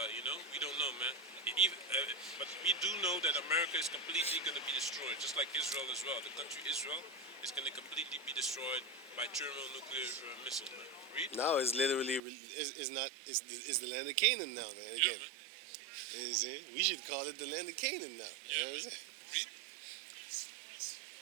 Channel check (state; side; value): drops out; left; at 12.2 s